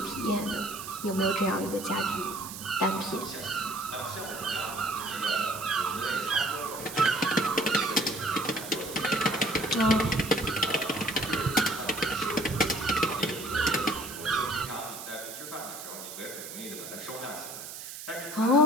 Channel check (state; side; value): noise; right; hiss, 10 dB below the sound